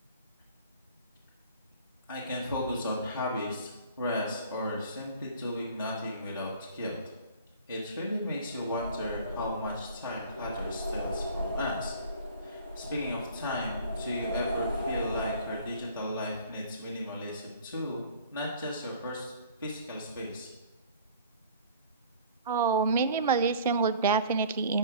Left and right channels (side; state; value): both; inverted; correlation -0.47